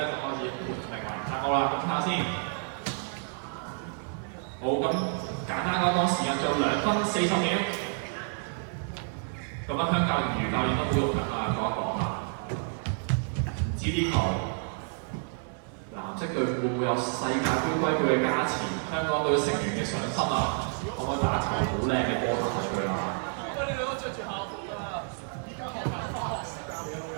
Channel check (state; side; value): silent; left; 56 dB below the other